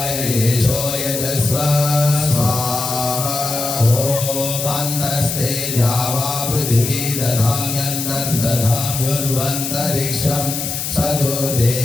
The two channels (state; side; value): noise; left; hiss, 4 dB below the sound